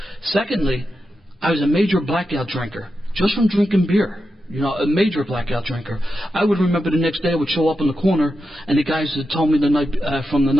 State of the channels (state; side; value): normal; both; correlation 0.88